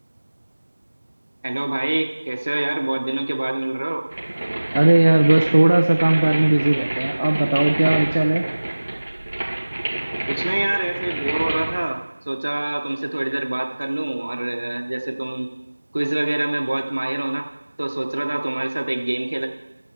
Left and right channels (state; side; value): inverted; both; correlation -1.00